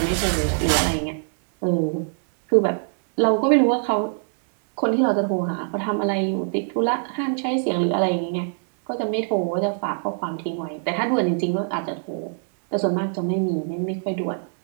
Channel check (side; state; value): left; silent; 62 dB below the other